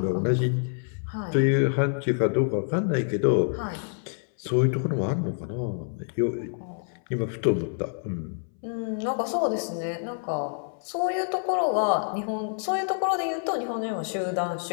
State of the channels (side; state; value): right; silent; 60 dB below the other